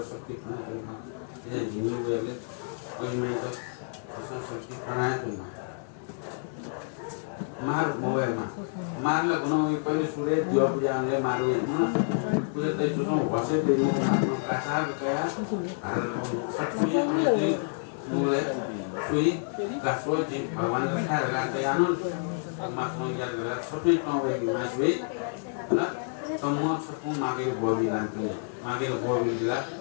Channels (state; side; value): silent; right; digital silence